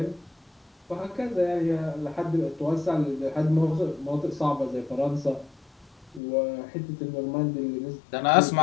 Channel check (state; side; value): drops out; right; at 6.2 s